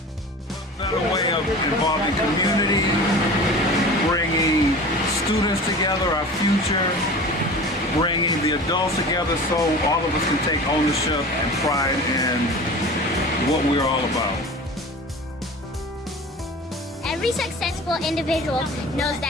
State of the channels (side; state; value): both; normal; correlation 0.37